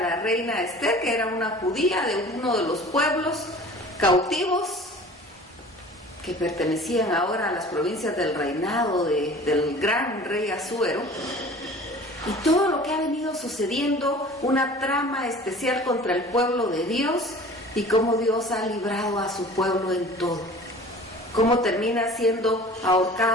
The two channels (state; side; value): normal; both; correlation 0.44